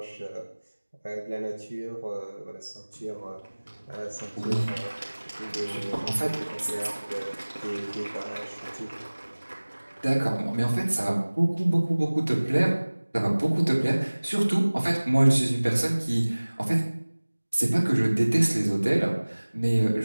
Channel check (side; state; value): both; inverted; correlation -1.00